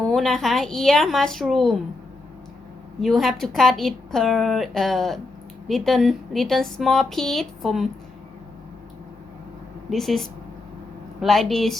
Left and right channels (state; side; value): quieter; right; 3.2 dB